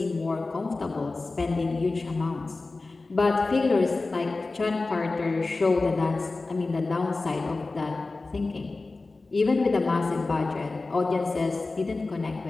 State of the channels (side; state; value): right; quieter; 3.5 dB